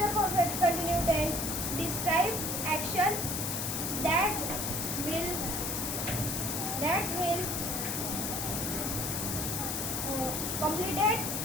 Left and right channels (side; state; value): left; noise; hiss, 2 dB below the sound